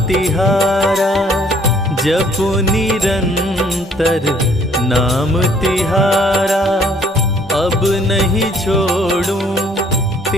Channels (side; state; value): both; normal; correlation 0.62